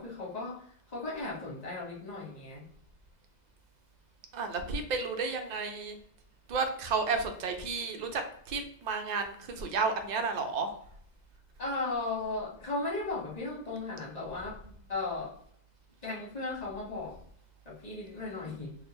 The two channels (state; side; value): late; left; 2.0 ms